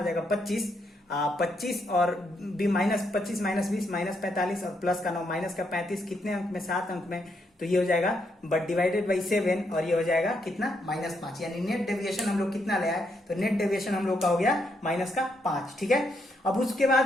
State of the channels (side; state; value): both; normal; correlation 0.77